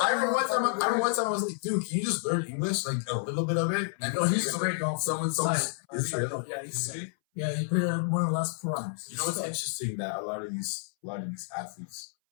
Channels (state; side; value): silent; right; 58 dB below the other